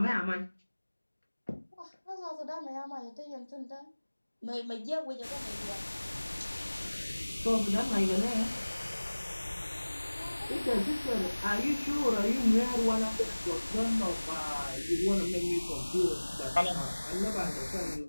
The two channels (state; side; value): inverted; both; correlation -1.00